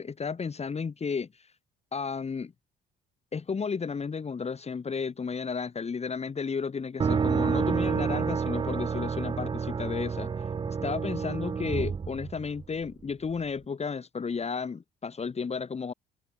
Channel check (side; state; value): both; normal; correlation 0.62